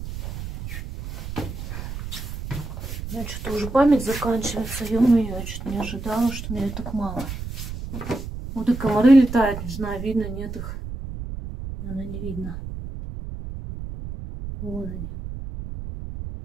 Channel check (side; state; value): right; noise; rumble, 8 dB below the sound